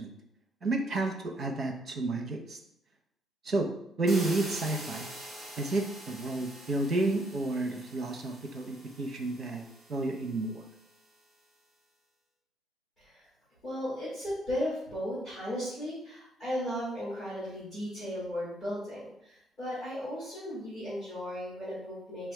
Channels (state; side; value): normal; both; correlation 0.70